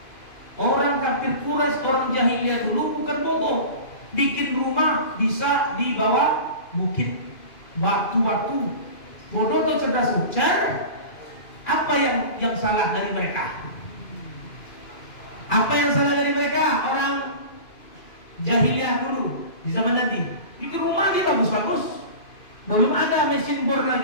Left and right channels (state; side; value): late; right; 2.5 ms